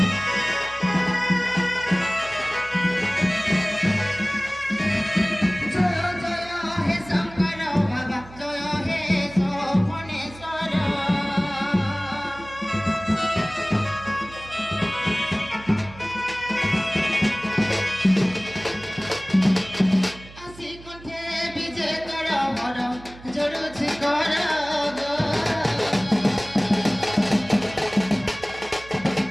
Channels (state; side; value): noise; right; hum, 19 dB below the sound